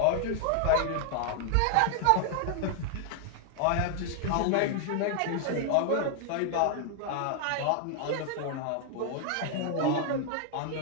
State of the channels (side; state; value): both; different; correlation 0.00